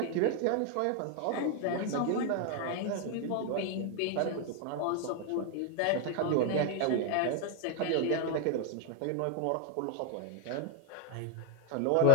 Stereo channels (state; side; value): different; both; correlation 0.00